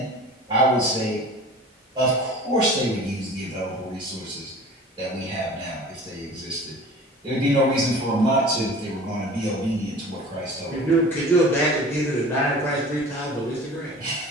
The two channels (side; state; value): both; normal; correlation 0.42